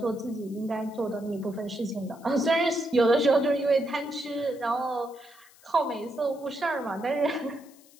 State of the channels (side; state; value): left; noise; hiss, 26 dB below the sound